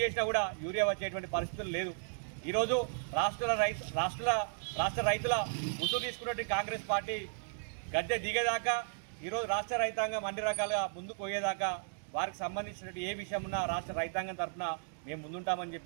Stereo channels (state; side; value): silent; left; digital silence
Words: చేసినా కూడా యూరియా వచ్చేటువంటి పరిస్థితులు లేదు. ఈరోజు రాష్ట్ర రైతుల ముసుగు తీసుకున్నటువంటి కాంగ్రెస్ పార్టీ గద్దె దిగేదాకా ఈరోజు రాష్ట్ర రైతాంగం అన్ని రకాలుగా ముందుకు పోయేదాకా వారికి సంబంధించినటువంటి ఏ విషయం ఉన్నా రాష్ట్ర రైతాంగం తరఫున మేము ముందుంటామని